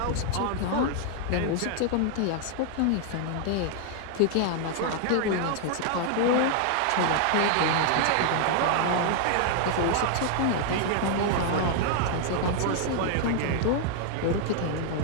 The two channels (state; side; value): different; both; correlation 0.00